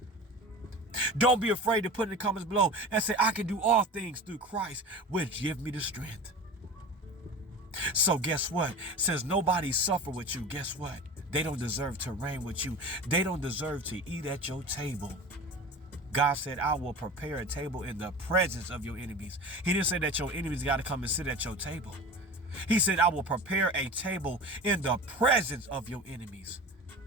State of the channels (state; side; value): normal; both; correlation 0.34